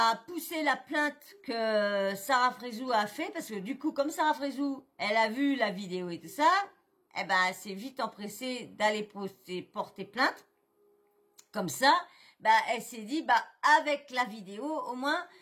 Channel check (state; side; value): identical; both; correlation 1.00